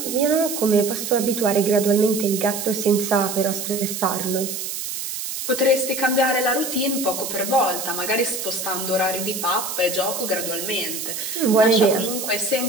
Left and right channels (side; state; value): right; noise; hiss, 5 dB below the sound